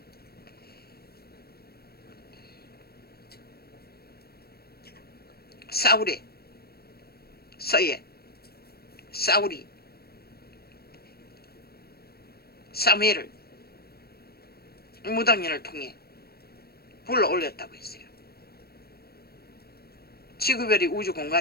사울의 서예 사울이 사무엘을 무당년을 통해 불러 올렸다고 했어요. 지구별이 우주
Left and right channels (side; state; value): right; late; 0.46 ms